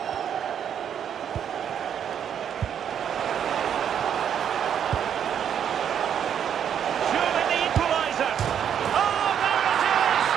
Surely the equaliser. Oh, there it is!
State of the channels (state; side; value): quieter; left; 8.8 dB